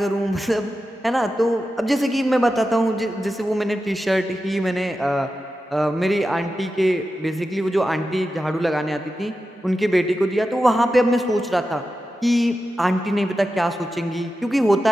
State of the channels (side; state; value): both; normal; correlation 0.91